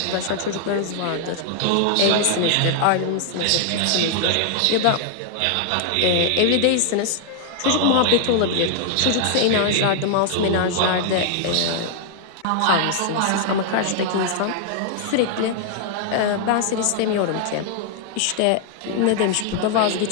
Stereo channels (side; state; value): both; different; correlation 0.00